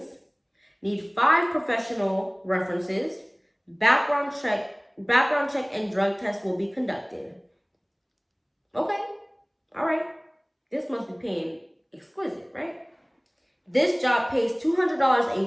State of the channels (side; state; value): both; identical; correlation 1.00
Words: Need 5 professional references. Background check and drug test will be conducted. Okay, all right. This must be paying exquisite, right? This job pays $200 a